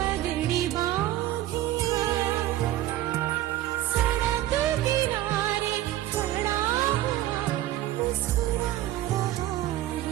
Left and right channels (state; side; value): quieter; left; 14.4 dB